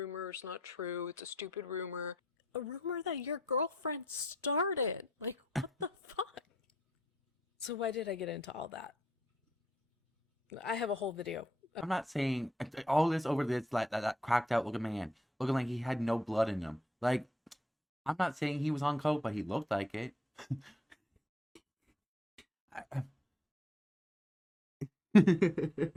is not true. It's a stupid rumor. A rumor that your girlfriend started. Like, what the fuck? So why did I get into all that? I have a whole video. I'm not saying all this over this like that cracked out looking man, looking like he had no blood in him. Like, I'm not saying he was on coke, but he looked like it.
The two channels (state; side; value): normal; both; correlation 0.71